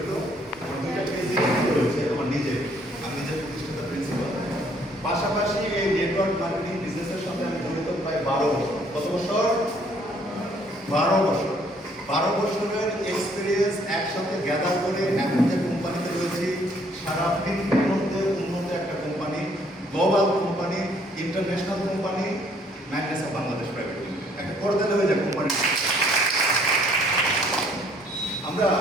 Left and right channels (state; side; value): normal; both; correlation 0.63